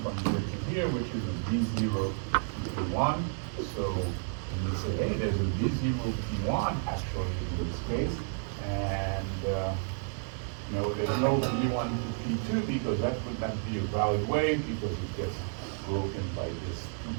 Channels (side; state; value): left; silent; 57 dB below the other